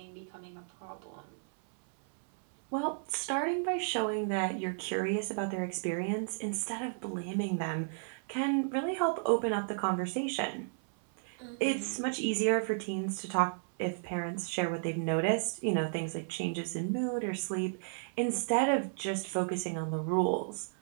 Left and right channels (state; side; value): silent; left; 55 dB below the other